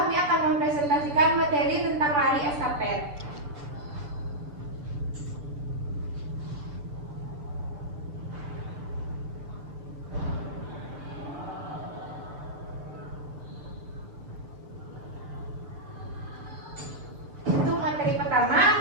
akan mempresentasikan materi tentang lari estafet. Untuk materi pertama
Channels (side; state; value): left; late; 6.9 ms